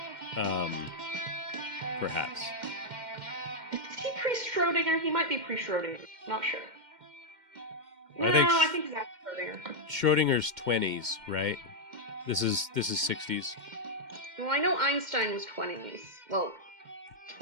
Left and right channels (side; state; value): left; late; 2.1 ms